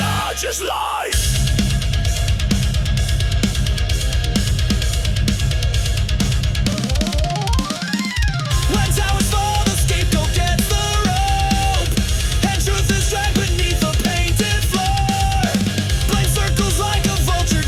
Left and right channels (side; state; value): both; identical; correlation 1.00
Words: lies. When towers fall, the scapegoat gets the rope, and truth is dragged beneath the painted floor. Blame circles like a vulture